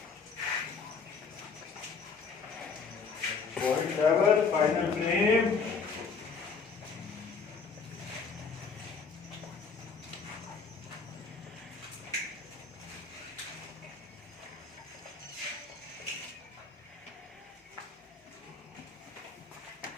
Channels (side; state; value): right; quieter; 5.1 dB